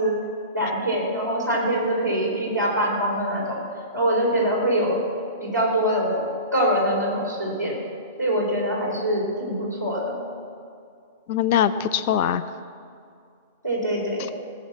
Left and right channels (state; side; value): inverted; both; correlation -0.32